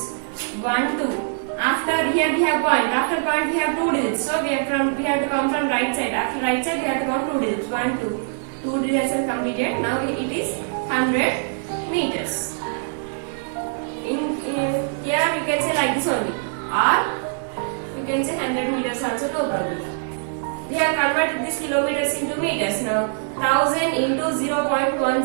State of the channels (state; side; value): silent; left; 62 dB below the other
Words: 1, 2. After here we have point. After point we have 2 digits. So we have to count from right side. After right side we have to count 2 digits. 1, 2. 2 digits are completed. Now it is 100 meters. Here you can say like this only. Or convert this kilometers into meters now. 1000 into